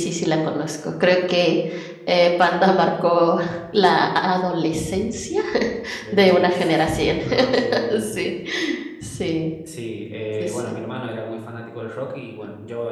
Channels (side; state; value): both; identical; correlation 1.00